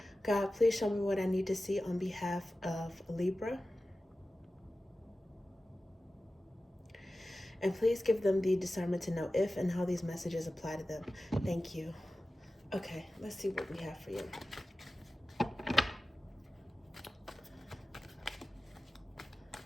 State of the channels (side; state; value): both; normal; correlation 0.95